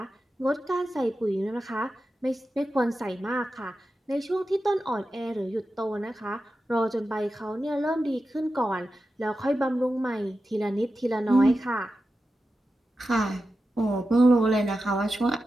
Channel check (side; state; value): both; normal; correlation 0.91